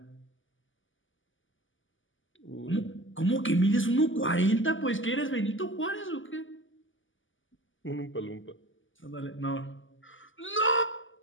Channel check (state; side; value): late; right; 0.57 ms